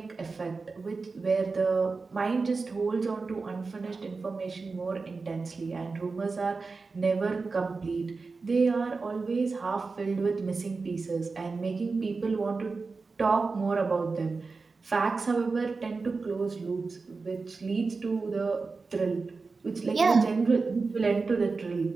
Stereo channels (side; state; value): left; quieter; 4.2 dB